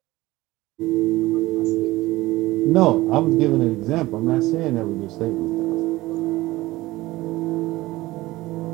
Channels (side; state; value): left; quieter; 18.4 dB